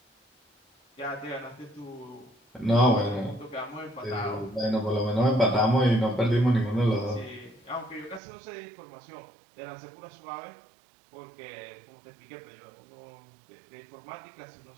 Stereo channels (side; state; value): left; drops out; at 8.2 s